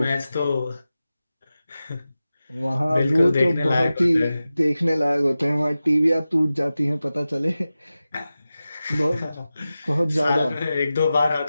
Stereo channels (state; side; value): inverted; both; correlation -0.94